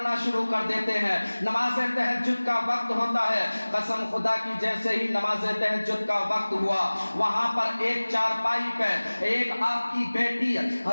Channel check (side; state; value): both; inverted; correlation -1.00